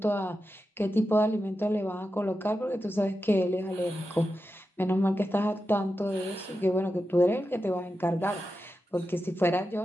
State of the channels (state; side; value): normal; both; correlation 0.90